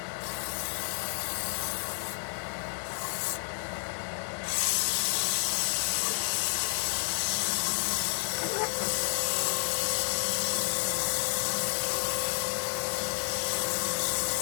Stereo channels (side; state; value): right; silent; digital silence